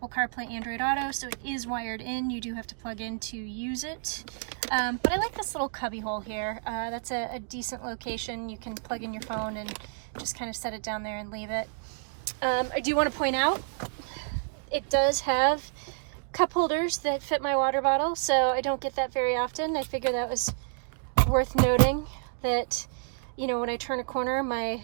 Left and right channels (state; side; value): silent; left; digital silence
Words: CarPlay Android Auto. So it is wired in. You do have to plug in to use it. But I like this little cubby hole here. That's a decent location. You can plug in your phone and just kind of set it down there and leave it. I do want to point out, it does have cup holders that fit my water bottle, so I don't get that very often. I figure that was worth noting, that, you know, when I turn a corner,